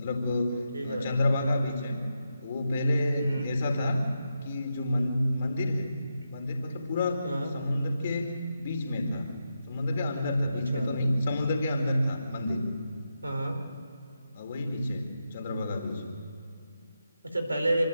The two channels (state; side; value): inverted; both; correlation -0.86